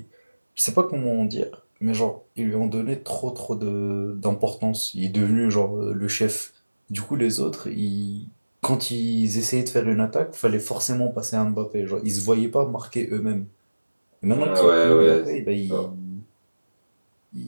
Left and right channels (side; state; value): both; inverted; correlation -1.00